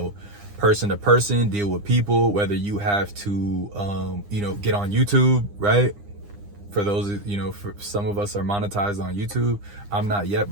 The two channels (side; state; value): left; late; 9.9 ms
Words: person to person, deal with people, whether you have to, get on YouTube, right? For those, for some of us are monetized on YouTube. I'm not yet,